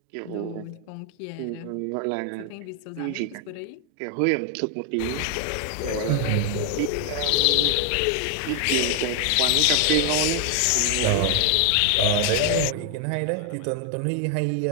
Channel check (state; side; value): different; both; correlation 0.00